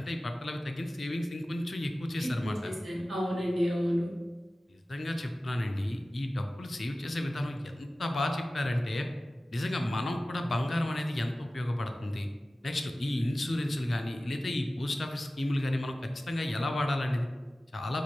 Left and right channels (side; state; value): both; normal; correlation 0.96